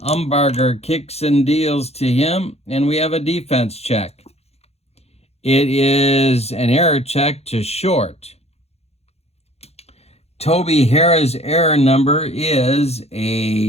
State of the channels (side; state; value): right; late; 0.30 ms